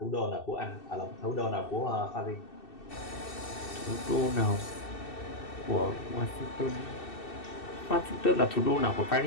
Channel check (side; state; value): right; late; 2.7 ms